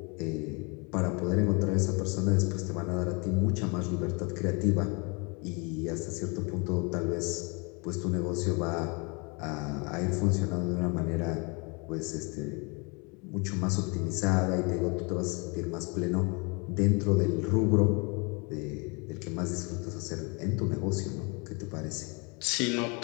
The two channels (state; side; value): quieter; right; 31.2 dB